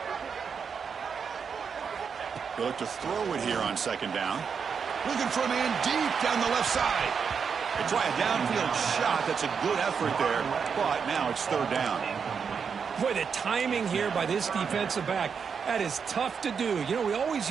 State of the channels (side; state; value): left; quieter; 6.3 dB